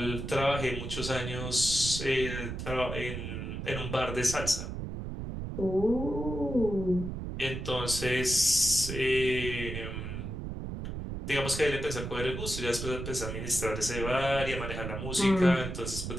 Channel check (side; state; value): right; noise; rumble, 6 dB below the sound